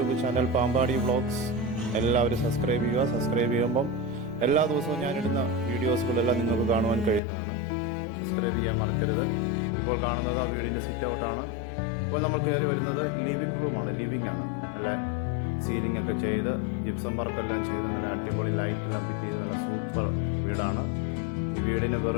ചാനൽ പാമ്പാടി വ്ളോഗ്സ് എല്ലാവരും സബ്സ്ക്രൈബ് ചെയ്യുക. സബ്സ്ക്രൈബ് ചെയ്യുമ്പം എല്ലാ ദിവസവും ഞാനിടുന്ന വീഡിയോസുകളെല്ലാം നിങ്ങൾക്ക് കാണുവാൻ കഴിയുന്നതാണ്. സബ്സ്ക്രൈബ് ചെയ്യാൻ മറക്കരുത്. ഇപ്പോൾ കാണുന്നത് ആ വീടിൻ്റെ സിറ്റ് ഔട്ടാണ്. ഇപ്പോൾ നമ്മൾ കയറി വരുന്നത് ലിവിങ് റൂമാണ്. ലിവിങ് ആണ്. നല്ല സീലിംഗ് ഒക്കെ ചെയ്ത് ജിപ്സം വർക്കെല്ലാം ചെയ്ത് നല്ല അടിപൊളി ലൈറ്റെല്ലാം ഫിറ്റ് ചെയ്ത് നല്ല സൂപ്പർ വീടാണ്. ഈ വീടിന്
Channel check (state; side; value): drops out; right; at 7.2 s